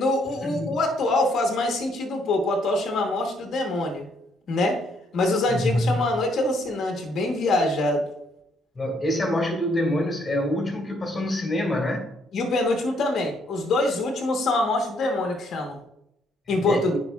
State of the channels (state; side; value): normal; both; correlation 0.70